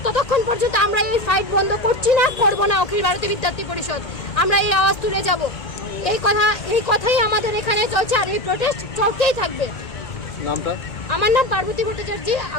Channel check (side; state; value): right; late; 1.9 ms